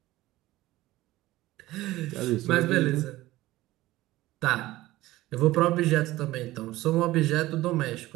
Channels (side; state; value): left; quieter; 17.2 dB